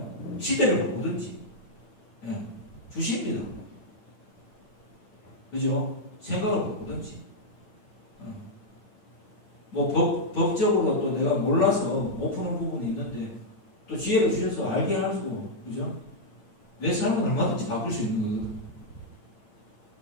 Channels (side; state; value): right; late; 8.8 ms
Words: 시대를 바꾸든지 주십니다. 그죠? 생각을 바꾸든지 뭐 법적으로 또 내가 몰라서 못 푸는 부분이 있는데 또 지혜를 주셔서 알게 하시고 그죠? 내 삶은 얼마든지 바꿀 수 있는 거거든.